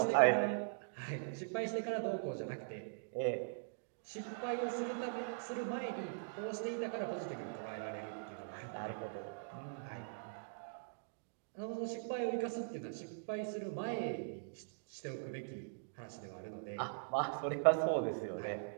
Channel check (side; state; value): left; silent; digital silence